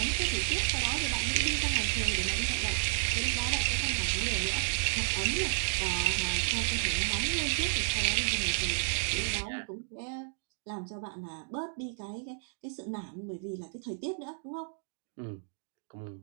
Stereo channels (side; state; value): left; silent; digital silence